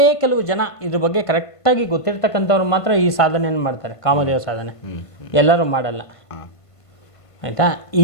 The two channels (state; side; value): late; right; 1.5 ms